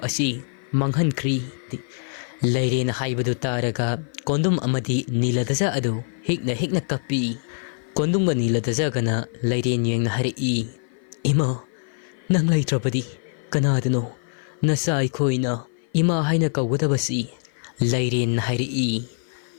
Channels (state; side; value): silent; right; 55 dB below the other